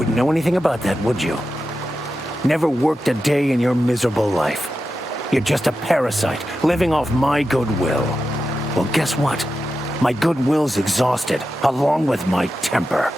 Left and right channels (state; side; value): normal; both; correlation 0.90